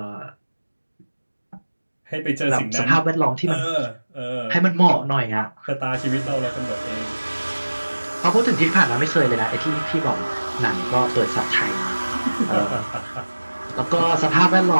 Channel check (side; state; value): both; inverted; correlation -1.00